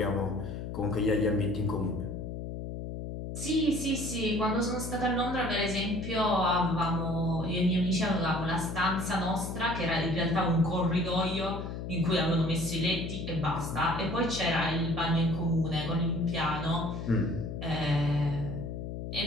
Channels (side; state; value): left; noise; hum, 6 dB below the sound